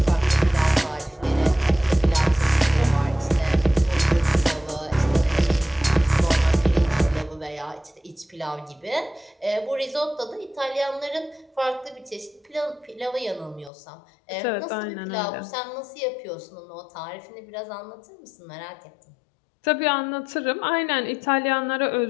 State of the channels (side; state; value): right; drops out; at 13.7 s